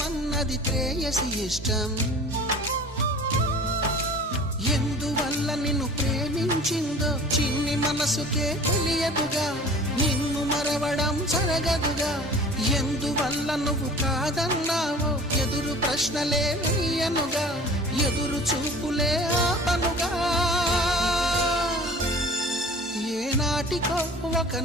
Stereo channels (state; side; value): normal; both; correlation 0.44